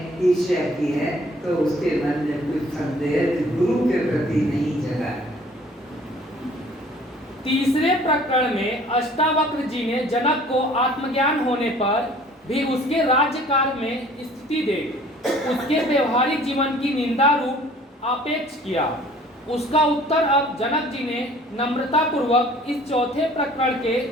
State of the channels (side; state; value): both; normal; correlation 0.53